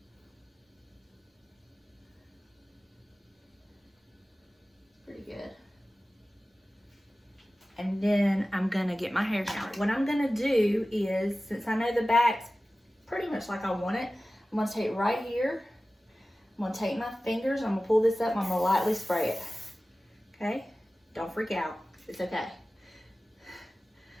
Pretty good. And then I'm gonna get my hair down. What I'm gonna do is, since I know the back's pretty much like I want it, I'm gonna take it right here. I'm gonna take my fingers, I'm gonna pull this up, and I'm gonna lightly spray it. Okay? Don't freak out, it's okay.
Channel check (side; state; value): both; normal; correlation 0.96